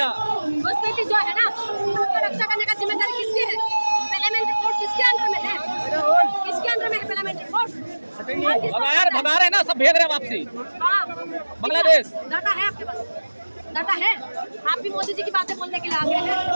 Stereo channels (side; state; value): both; inverted; correlation -1.00